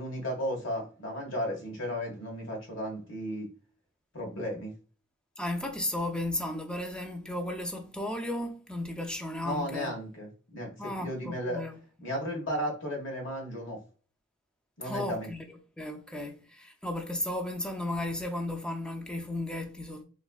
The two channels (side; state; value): both; normal; correlation 0.34